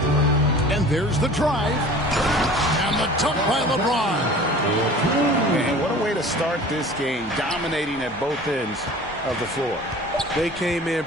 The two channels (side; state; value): both; normal; correlation 0.43